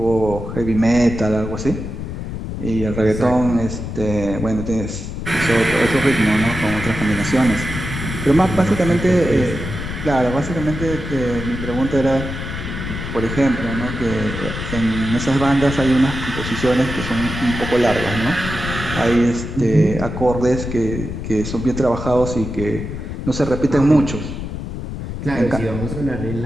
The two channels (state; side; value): noise; left; rumble, 6 dB below the sound